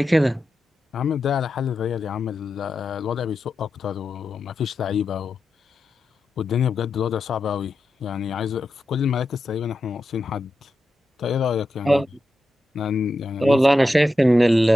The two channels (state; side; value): normal; both; correlation 0.89